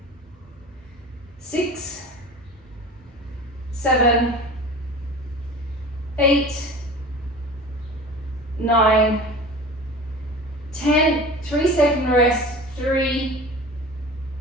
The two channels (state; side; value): normal; both; correlation 0.38